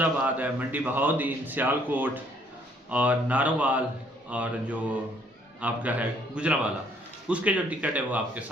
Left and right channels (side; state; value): both; normal; correlation 0.64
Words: है, मंडी बहाउद्दीन, सियालकोट और नारोवाल और जो आपका है गुजरांवाला, उसके जो टिकट है वो आपके